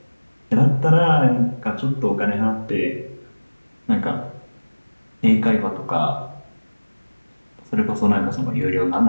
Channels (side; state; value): both; inverted; correlation -1.00